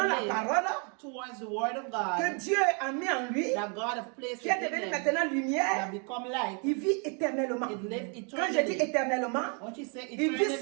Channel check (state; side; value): quieter; left; 37.6 dB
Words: la lives parole towards the word of que God, Dieu a mis en lui, that God has placed qui est within devenu them, maintenant that lumière, become light, il vit éternellement. it lives Quand je dis eternally. éternellement, What you say il vit